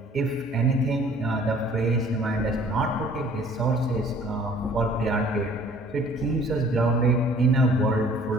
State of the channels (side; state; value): both; normal; correlation 0.54